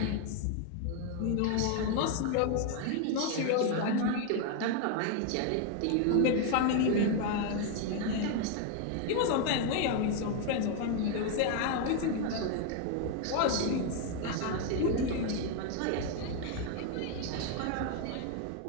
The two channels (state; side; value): different; both; correlation 0.01